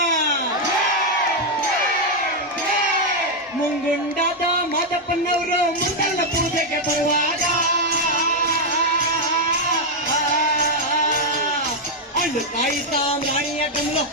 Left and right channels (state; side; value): normal; both; correlation 0.01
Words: ಮುಂಗುಂಡಾದ ಮಾದಪ್ಪನವರು ಮುಂದಲ್ಲ ಪೂಜೆಗೆ ಬರುವಾಗ ಹಣ್ಣು ಕಾಯಿ ಸಾಮ್ರಾಣಿಯ ಕಮಲ